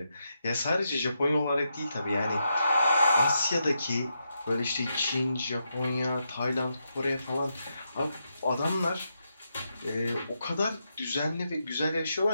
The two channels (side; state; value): both; inverted; correlation -0.83